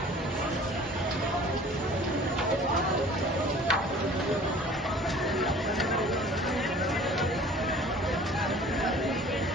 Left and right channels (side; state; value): both; normal; correlation 0.48